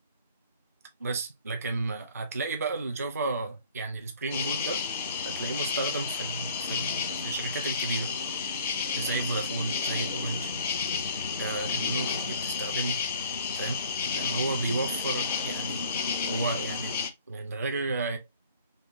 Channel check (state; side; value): inverted; both; correlation -0.51